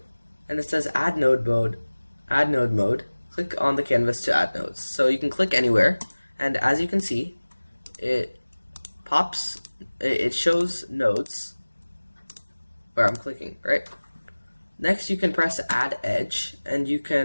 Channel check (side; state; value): both; inverted; correlation -1.00